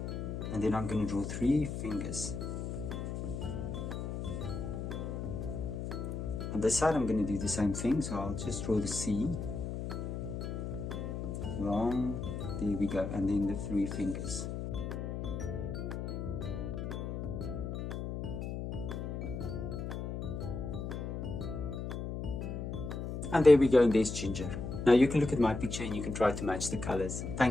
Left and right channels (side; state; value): left; noise; hum, 4 dB below the sound